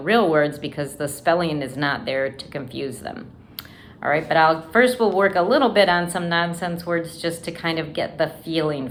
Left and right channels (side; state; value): both; identical; correlation 1.00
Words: words because the spelling is not there to confuse them. All right, but first we'll work a little bit on some nonsense words just to kind of get the feeling